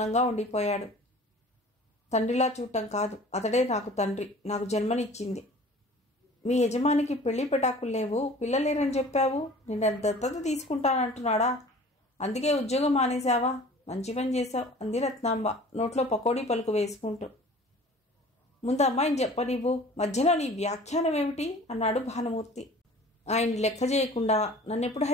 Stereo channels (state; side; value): normal; both; correlation 0.45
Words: ఉండిపోయాడు. తండ్రిలా చూడటం కాదు, అతడే నాకు తండ్రి, నాకు జన్మనిచ్చింది. మీ యజమానికి పెళ్లి పెటాకులు లేవు, పిల్లలేరని చెప్పావు. నిన్న దత్తత తీసుకుంటానంటున్నాడా? అందుకే ఉద్యోగం మానేశావా? మంచి పని చేశావు, అంది రత్నాంబ నోట్లో పకోడీ పలుకు వేసుకుంటూ. ముందు అమ్మాయిని చెప్పనివ్వు, మధ్యలో నీ వ్యాఖ్యానం ఏమిటి? అన్నాడు భానుమూర్తి. ఆయన్ని లెక్క చేయకుండా నన్నెప్పుడు